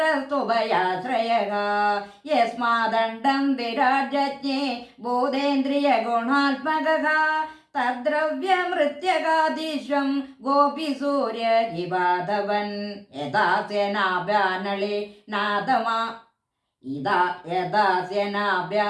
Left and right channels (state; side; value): identical; both; correlation 1.00